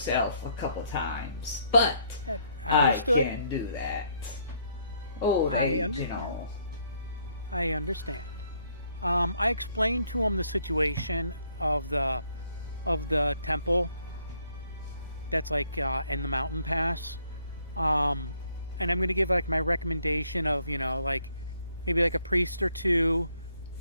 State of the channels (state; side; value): inverted; both; correlation -0.69